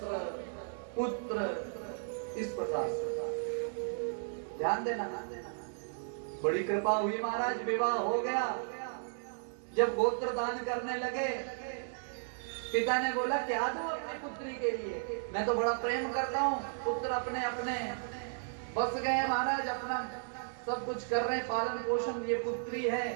पुत्र, इस प्रकार से। ध्यान देना, बड़ी कृपा हुई महाराज, विवाह हो गया। जब गोत्र दान करने लगे, पिता ने बोला क्या दूं अपनी पुत्री के लिए? मैं तो बड़ा प्रेम करता हूँ। पुत्र अपने अपने बस गए महाराज, अपना सब कुछ कर रहे हैं, पालन पोषण। ये पुत्री है,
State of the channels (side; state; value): left; silent; digital silence